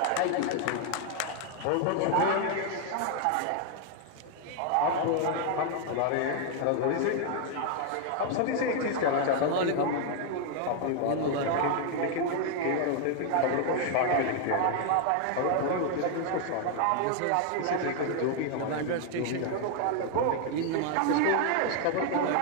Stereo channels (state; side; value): different; both; correlation 0.00